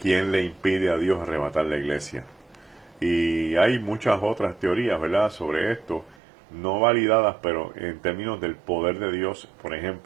le impide a Dios arrebatar la iglesia? Y hay muchas otras teorías, ¿verdad?, sobre esto, no validadas, pero en términos del poder de Dios, por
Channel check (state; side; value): drops out; left; at 6.2 s